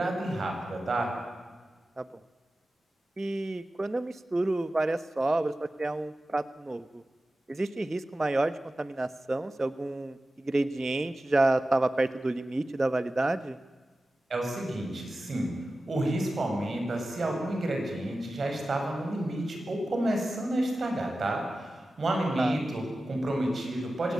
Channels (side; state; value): both; normal; correlation 0.94